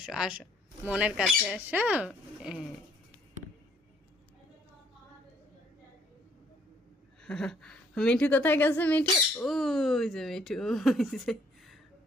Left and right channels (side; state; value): both; normal; correlation 0.64